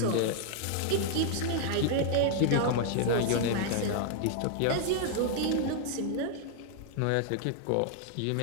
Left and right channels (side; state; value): both; different; correlation 0.00